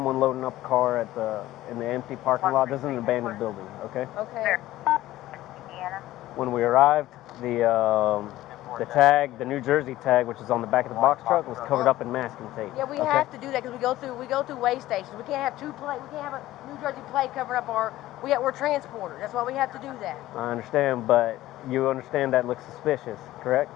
loading up a car in the empty parking lot. This is an abandoned building, okay? Okay. When we arrived, the tag, the New Jersey tag, which is on the back of the box truck, was covered up in masking tape. Yeah, we okay? have to do that because we go through weigh stations. We can't have we can't have a New Jersey plate covering up we're transporters. That's why we have to do that. I understand, but you understand that looks suspicious, correct?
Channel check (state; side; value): quieter; right; 15.5 dB